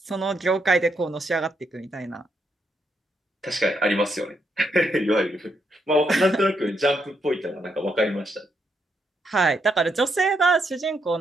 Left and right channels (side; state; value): both; normal; correlation 0.78